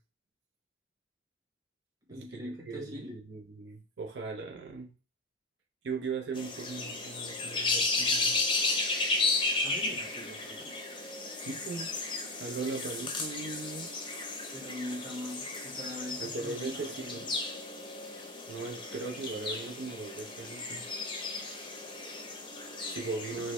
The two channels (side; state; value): both; normal; correlation 0.17